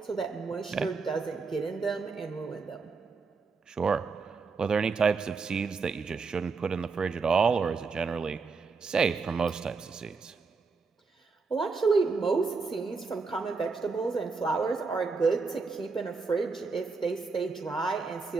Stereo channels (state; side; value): quieter; left; 4.6 dB